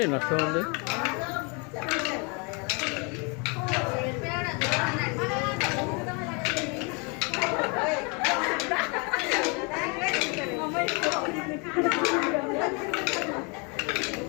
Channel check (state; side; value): quieter; right; 32.4 dB